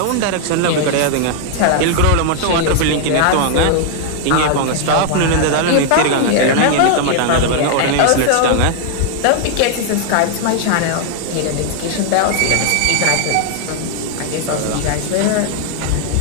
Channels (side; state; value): both; different; correlation 0.00